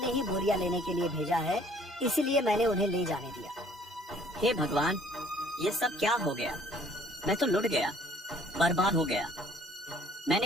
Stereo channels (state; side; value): normal; both; correlation 0.57